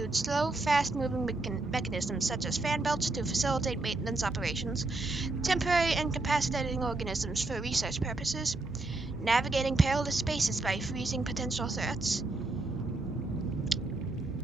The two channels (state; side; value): quieter; left; 3.1 dB